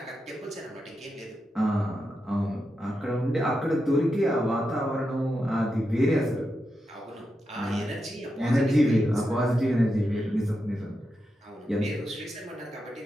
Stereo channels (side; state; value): both; normal; correlation 0.87